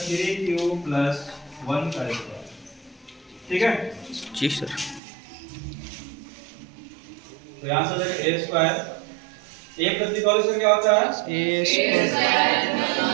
3q प्लस 1 का स्क्वायर। ठीक है जी सर। तो यहाँ से हो जाएगा a square. a plus b का होल स्क्वायर क्या होता है? ए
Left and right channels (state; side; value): drops out; left; at 5.0 s